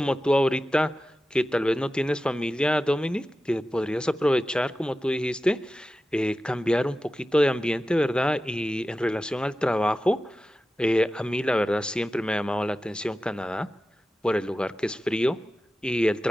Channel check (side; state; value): both; normal; correlation 0.94